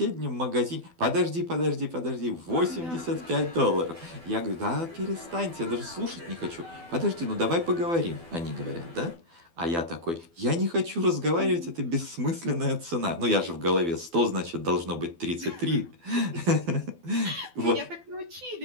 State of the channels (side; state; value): left; late; 12 ms